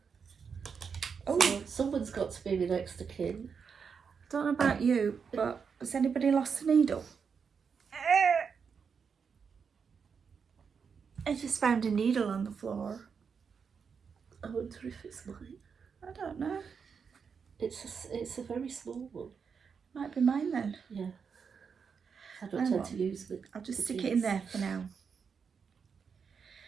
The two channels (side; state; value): left; quieter; 6.2 dB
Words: Oh, So someone's got to be my next of kin. I don't know about you, but has anybody lost a needle? I just found a needle on the floor. I wonder if it's mine. I don't know. It's a very small one. Might be mine then. Yeah. I don't Hang tend on. to use it. I'll just stick it in there for now.